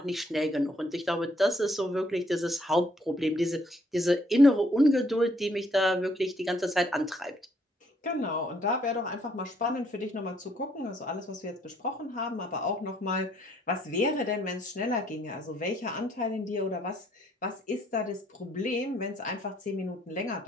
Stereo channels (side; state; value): both; normal; correlation 0.67